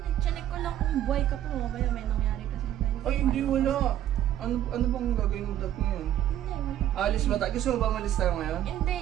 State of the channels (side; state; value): left; quieter; 11.7 dB